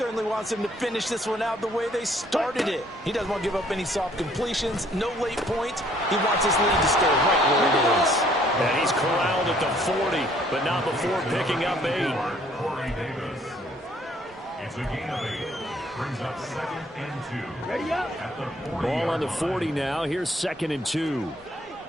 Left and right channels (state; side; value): normal; both; correlation 0.62